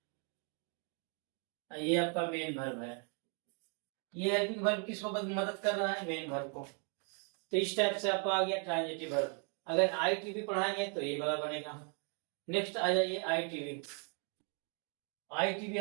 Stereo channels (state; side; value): quieter; left; 40.0 dB